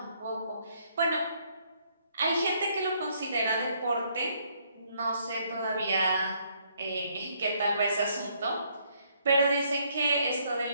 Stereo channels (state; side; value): inverted; both; correlation -0.69